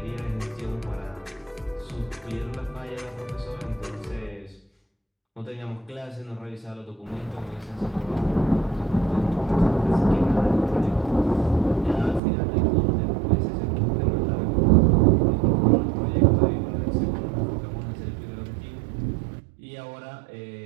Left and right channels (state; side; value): drops out; left; at 12.2 s